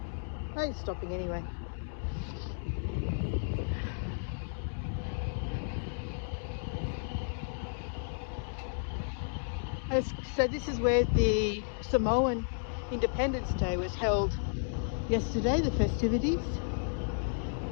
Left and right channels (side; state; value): right; silent; digital silence